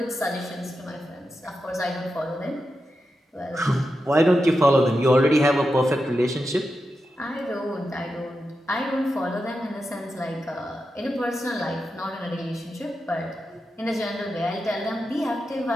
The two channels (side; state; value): both; normal; correlation 0.89